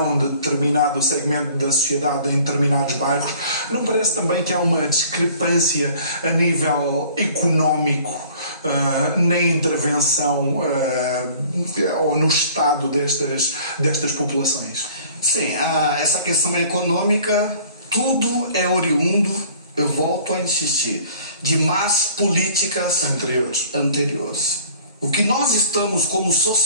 de determinado segmento da sociedade em determinados bairros, não parece também que há uma discrepância a nível económico na intervenção ou no estado destas populações? Sim, essa questão econômica, tudo é oriundo, eu volto a insistir, de más políticas anteriores. O que nós estamos como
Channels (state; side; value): inverted; both; correlation -0.51